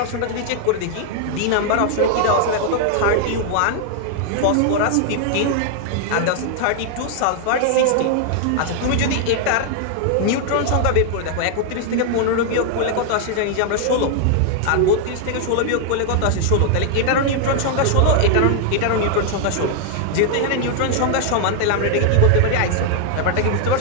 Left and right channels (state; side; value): different; both; correlation 0.00